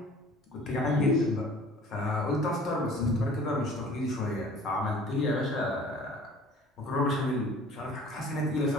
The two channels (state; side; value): normal; both; correlation 0.48